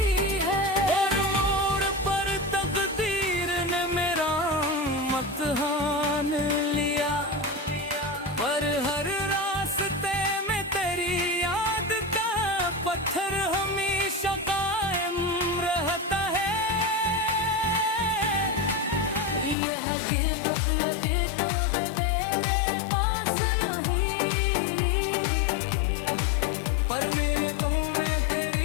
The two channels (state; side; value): drops out; right; at 19.6 s